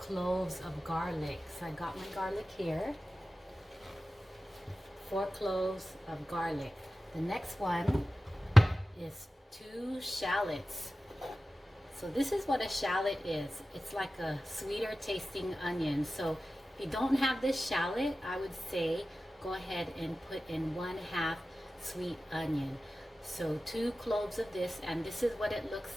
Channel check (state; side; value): normal; both; correlation 0.95